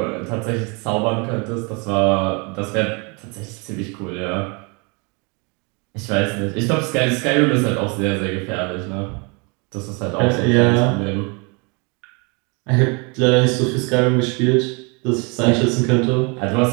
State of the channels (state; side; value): quieter; left; 31.6 dB